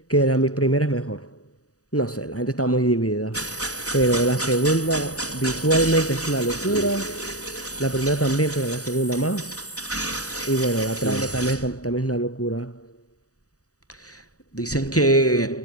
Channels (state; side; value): late; right; 0.66 ms